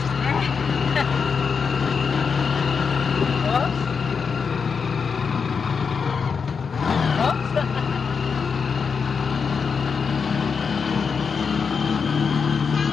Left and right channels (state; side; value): quieter; right; 5.8 dB